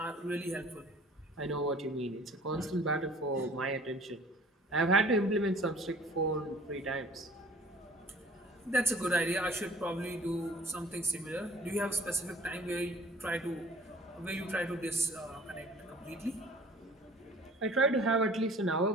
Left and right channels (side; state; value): both; normal; correlation 0.50